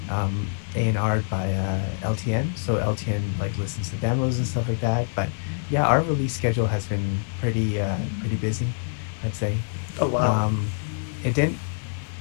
A&R'd by LTN. So LTN like listens to demos and stuff like that. But yeah, our release schedule has been pretty busy, I'd say. Oh, wow. Um, it didn't.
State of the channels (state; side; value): silent; right; digital silence